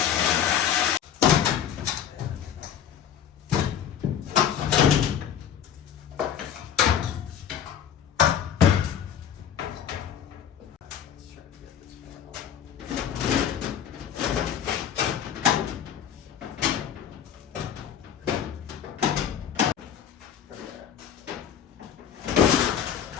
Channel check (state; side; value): quieter; right; 9.0 dB